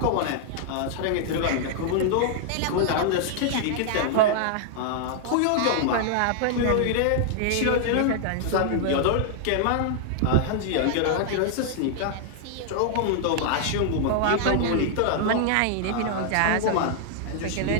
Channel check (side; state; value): both; different; correlation -0.01